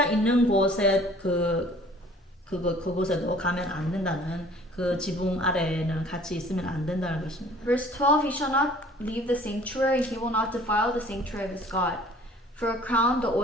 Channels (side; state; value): both; normal; correlation 0.52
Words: 있는 곳에 그곳에도 가면 안 된다는 그 지붕 아래에는 같이 있으면 안 된다는 것입니다. Verse 12, he shall not leave the sanctuary, he will not defile the sanctuary of his God. For a crown, the